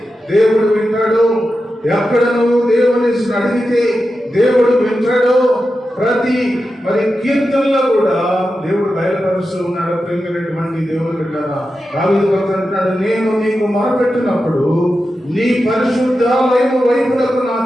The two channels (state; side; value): normal; both; correlation 0.90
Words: దేవుడు వింటాడు, ఎక్కడ నువ్వు దేవుని అడిగితే దేవుడు వింటాడు. ప్రతి కీర్తనలో కూడా దేవుడు బయలుపరుస్తూ ఉన్నాడు. ప్రేమైనటువంటి దేవుని బిడ్డరా, దావీదు భక్తుడు అంటున్నాడు, నేను నీకు మొరపెట్టినప్పుడు నీ పరిశుద్ధాలయం వైపునకు నా